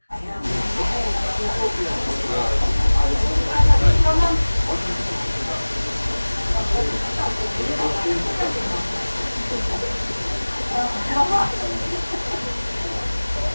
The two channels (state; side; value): inverted; both; correlation -1.00